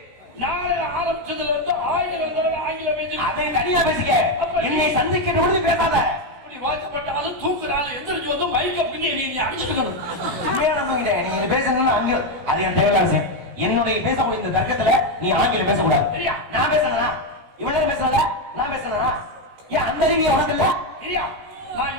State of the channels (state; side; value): late; left; 16 ms